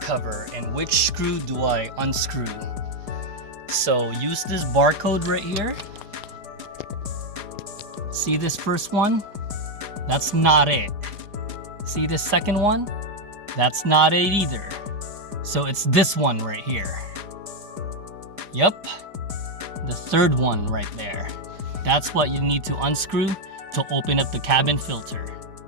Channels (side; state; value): left; late; 4.9 ms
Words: and which screw do I unscrew? So use this barcode right here. See this first one? That's not it. See this second one? That's not it either. So it's this one right here. Yep, the third one right there. That's what you need to unscrew to open up the cabin filter.